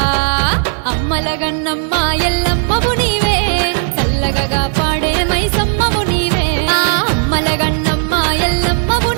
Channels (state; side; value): silent; left; 58 dB below the other